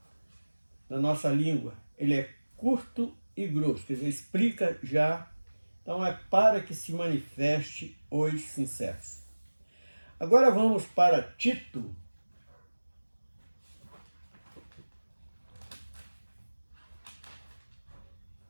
língua, ele é curto e grosso, quer dizer, explica já. Então é para que se manifeste os sinceros. Agora vamos para Tito.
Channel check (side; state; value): both; inverted; correlation -1.00